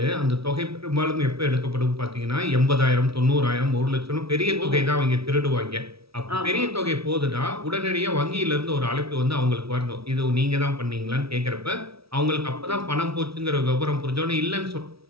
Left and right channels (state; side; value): late; left; 0.76 ms